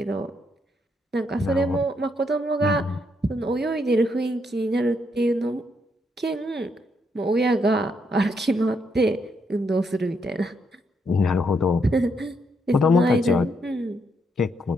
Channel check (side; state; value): both; normal; correlation 0.76